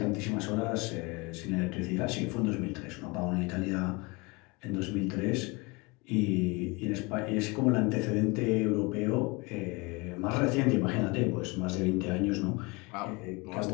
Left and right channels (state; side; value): quieter; right; 26.7 dB